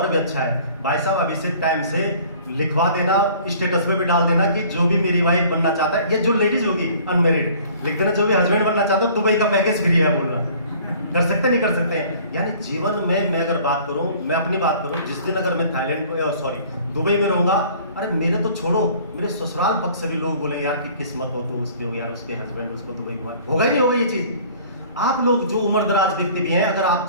भी अच्छा है। भाई साहब अभी से टाइम से लिखवा देना, स्टेटस में भी डाल देना कि जो भी मेरी वाइफ बनना चाहता है, ये जो लेडीज होगी अनमैरिड, लिख देना जो भी हस्बैंड बनना चाहता है दुबई का पैकेज फ्री है बोलना। कर सकते नहीं कर सकते हैं। यानी जीवन में मैं अगर बात करूं, मैं अपनी बात करूं, जिस दिन अगर मैं थाईलैंड दुबई में रहूंगा, अरे मेरे तो छोड़ो, मेरे ससुराल पक्ष से भी लोग बोलेंगे यार कि किस्मत हो तो उसके हो यार, उसके हस्बैंड उसको दुबई घुमा। होगा ही नहीं होगा ये चीज। आप लोग जो उम्र दराज व्यक्ति भी हैं, अगर आप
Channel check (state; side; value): inverted; both; correlation -0.51